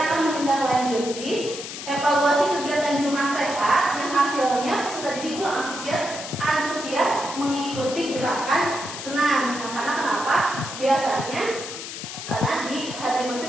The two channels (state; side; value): noise; left; hiss, 9 dB below the sound